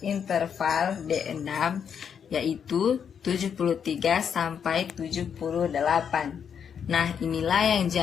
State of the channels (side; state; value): right; quieter; 7.5 dB